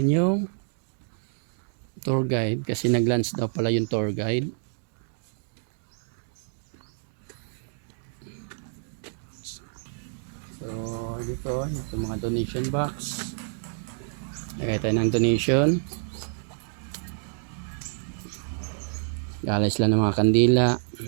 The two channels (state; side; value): silent; left; digital silence